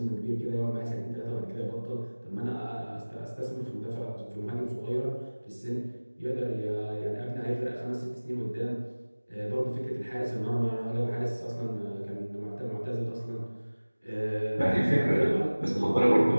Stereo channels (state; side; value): inverted; both; correlation -1.00